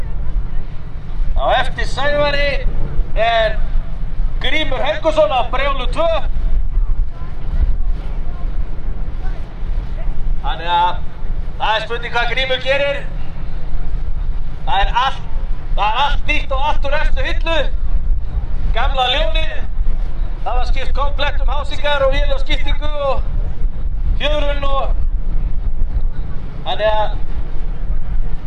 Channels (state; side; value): identical; both; correlation 1.00